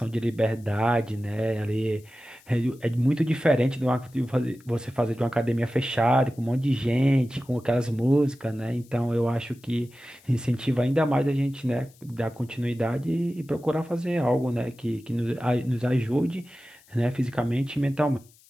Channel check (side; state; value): left; noise; hiss, 28 dB below the sound